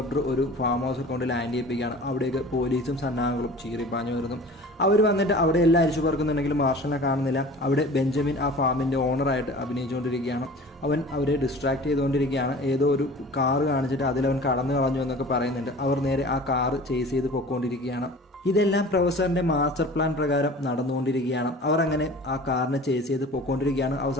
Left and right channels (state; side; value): normal; both; correlation 0.42